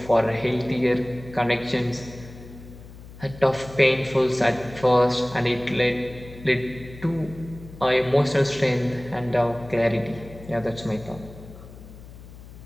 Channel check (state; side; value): noise; left; hum, 17 dB below the sound